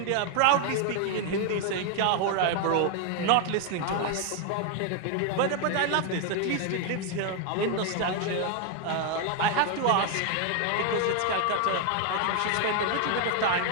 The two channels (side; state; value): both; different; correlation 0.01